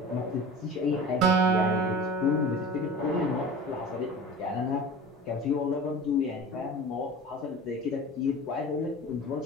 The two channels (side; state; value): both; normal; correlation 0.37